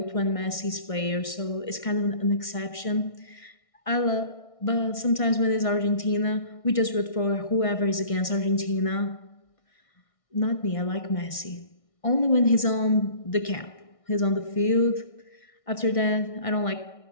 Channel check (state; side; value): late; right; 1.6 ms